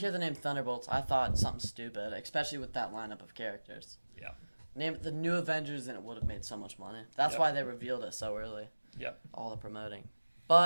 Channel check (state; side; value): inverted; both; correlation -1.00